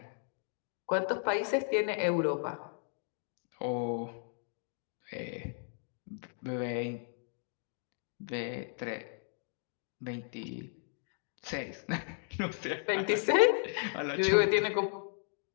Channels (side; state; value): right; silent; 54 dB below the other